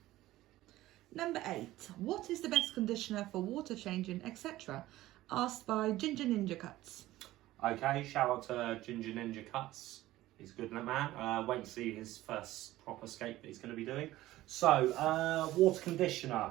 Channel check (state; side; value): quieter; left; 16.1 dB